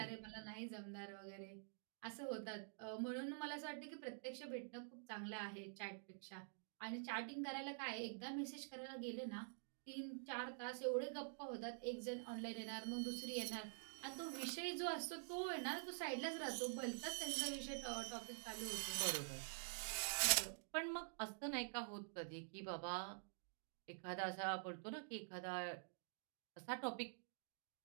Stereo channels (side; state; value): left; silent; digital silence